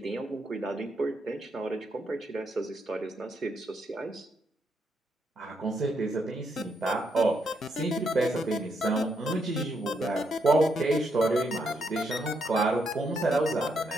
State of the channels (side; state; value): both; normal; correlation 0.78